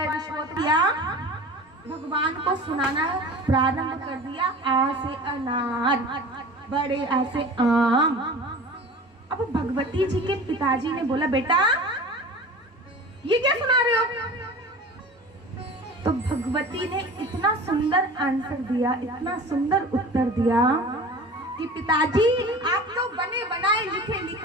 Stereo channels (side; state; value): both; normal; correlation 0.38